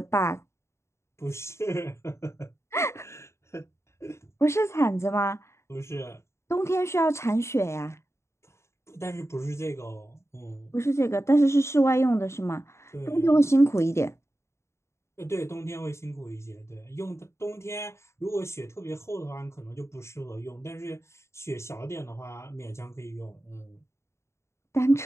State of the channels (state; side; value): late; right; 0.13 ms